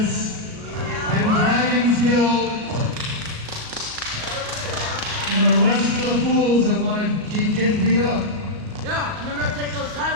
and Dragon's Guild and the rest of the fools that want to keep getting beat up. Yeah, and we're gonna take those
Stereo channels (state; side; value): late; left; 38 ms